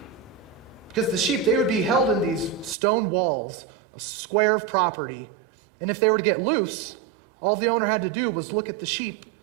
Because the sheep, they would be held in these stone walls, a square of property. And if they were to get loose, all the owner had to do was look at the sheep.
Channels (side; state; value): left; drops out; at 2.8 s